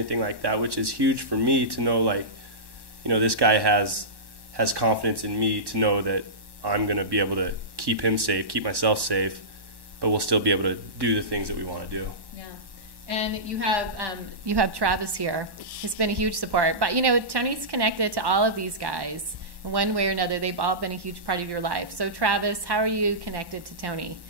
like that, which is huge for me to know, like, this guy has confidence in me to know that I'm going to be able to keep him safe, keep myself safe, but we'll still be able to do the things that we want to do. Yeah. And you have Travis here. He's been a huge support. But, Tony's connected to all of these guys. In one way or another, they've all been a huge part of your life. So, Travis, how are you connected to Tony?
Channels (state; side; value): late; left; 1.1 ms